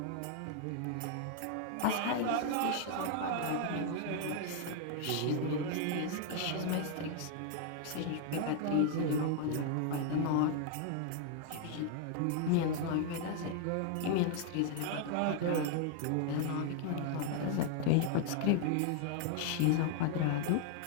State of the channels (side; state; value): both; different; correlation 0.00